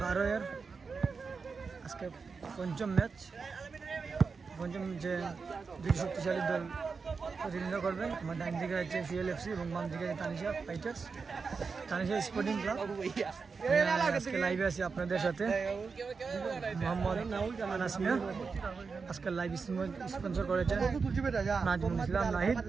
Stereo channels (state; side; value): quieter; left; 5.0 dB